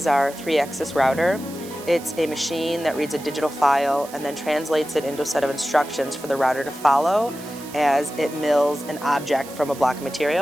our 3-axis router. It's a machine that reads a digital file and then translates it into a set of instructions for the router to follow as it mills an object from a block of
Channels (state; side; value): noise; right; hiss, 17 dB below the sound